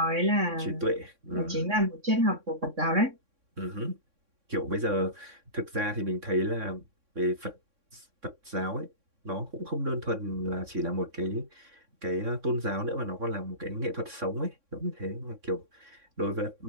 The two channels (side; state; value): left; late; 3.6 ms